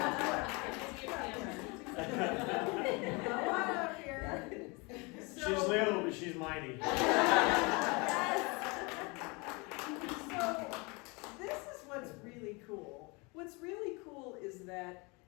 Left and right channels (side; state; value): right; quieter; 28.3 dB